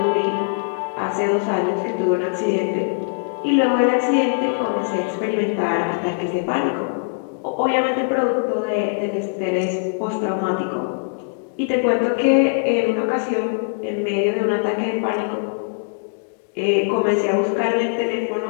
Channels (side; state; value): right; silent; digital silence